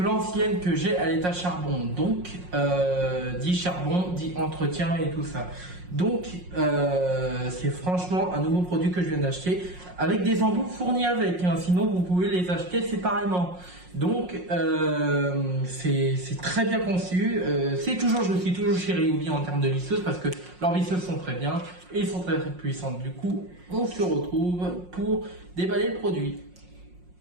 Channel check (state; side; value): late; left; 5.5 ms